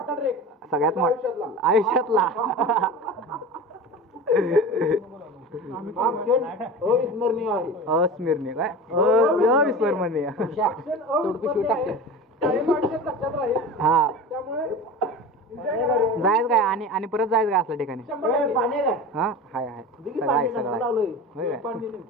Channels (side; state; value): both; normal; correlation 0.32